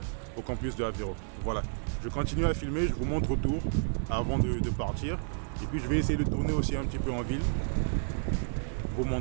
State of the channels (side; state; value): left; silent; digital silence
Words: au campus de Aveiro. Voilà, je continue à filmer, je vous montre autour avant de partir. Et puis je vais essayer de tourner aussi un petit peu en ville, vous